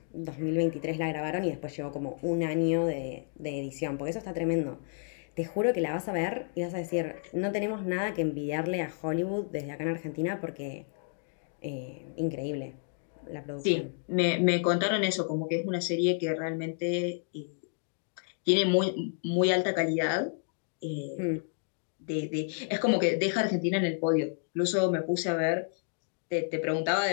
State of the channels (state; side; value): silent; right; 57 dB below the other